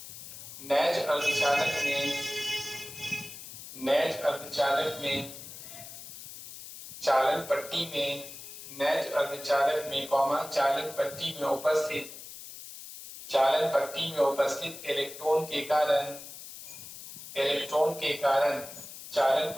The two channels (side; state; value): left; noise; hiss, 13 dB below the sound